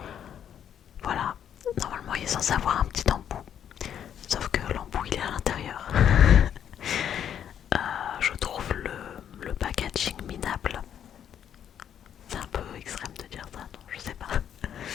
Voilà, normalement il est censé avoir un petit embout, sauf que l'embout il est à l'intérieur. Je trouve le packaging minable. C'est un peu extrême de dire ça, non, je sais pas.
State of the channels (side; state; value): right; quieter; 9.3 dB